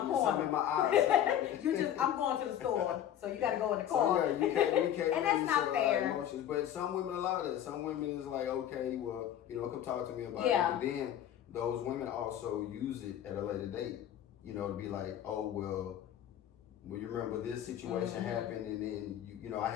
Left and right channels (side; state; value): right; quieter; 10.7 dB